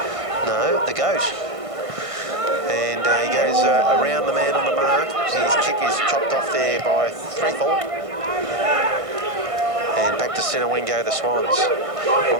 No, the Goat. And he goes around the man on the mark. His kick is chopped off there by Threathall. And back to centre wing go the Swans.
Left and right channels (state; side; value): late; left; 1.5 ms